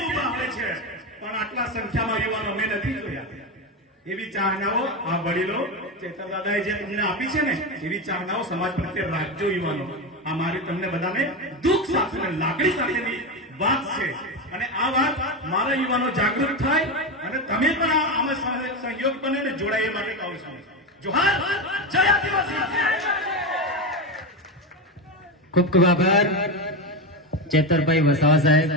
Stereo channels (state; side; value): normal; both; correlation 0.16